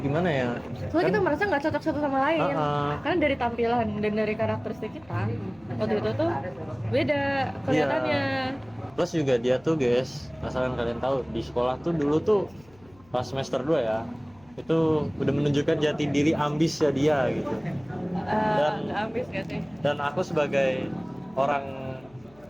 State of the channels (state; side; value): noise; left; hum, 28 dB below the sound